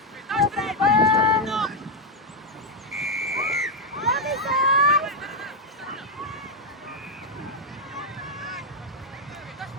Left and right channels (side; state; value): both; normal; correlation 0.03